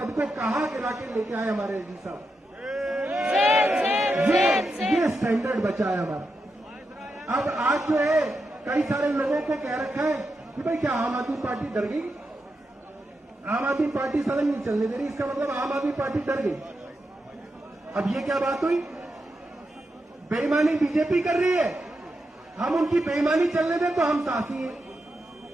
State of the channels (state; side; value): normal; both; correlation 0.86